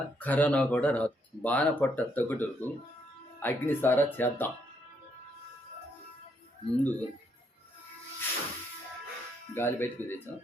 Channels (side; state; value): both; normal; correlation 0.74